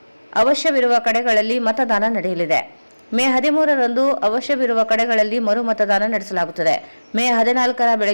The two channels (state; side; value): inverted; both; correlation -1.00